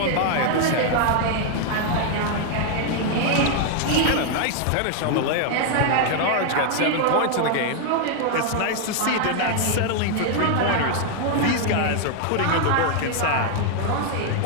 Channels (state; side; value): different; both; correlation 0.00